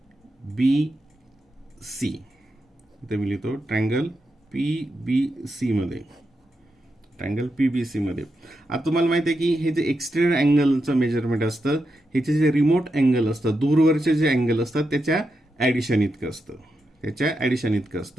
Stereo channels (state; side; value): normal; both; correlation 0.86